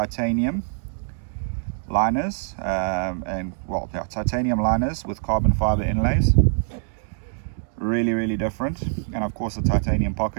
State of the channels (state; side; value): silent; left; digital silence